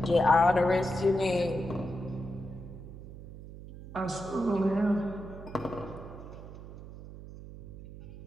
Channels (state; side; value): noise; right; hum, 14 dB below the sound